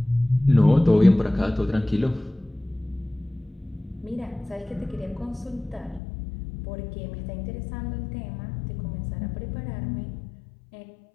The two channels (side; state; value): right; drops out; at 6.0 s